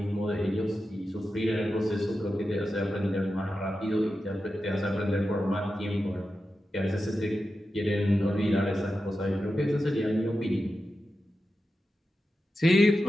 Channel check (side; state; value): both; normal; correlation 0.91